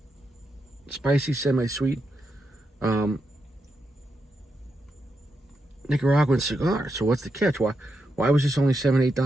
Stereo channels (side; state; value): both; normal; correlation 0.85